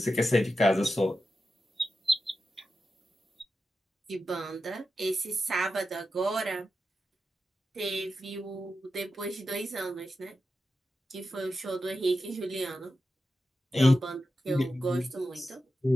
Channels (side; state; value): both; normal; correlation 0.90